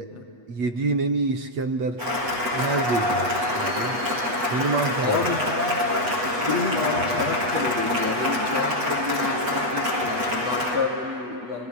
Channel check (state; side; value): late; left; 8.3 ms